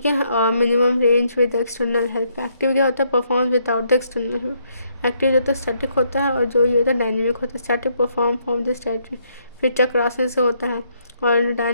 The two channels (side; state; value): both; inverted; correlation -0.73